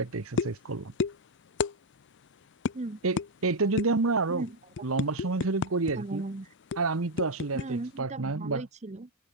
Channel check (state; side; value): normal; both; correlation 0.03